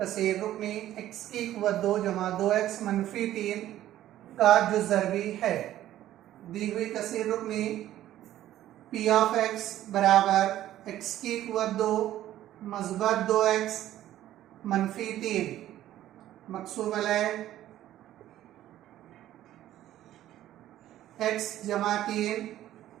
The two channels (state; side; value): quieter; left; 13.2 dB